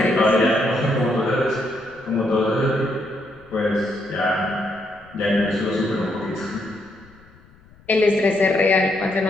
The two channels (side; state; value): left; noise; rumble, 27 dB below the sound